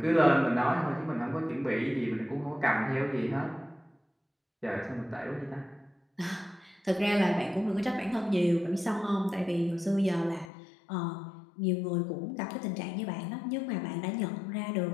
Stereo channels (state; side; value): drops out; right; at 10.5 s